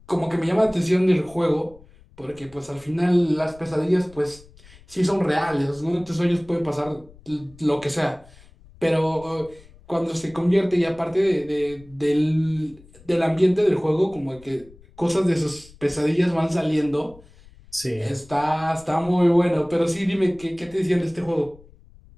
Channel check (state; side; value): noise; left; rumble, 24 dB below the sound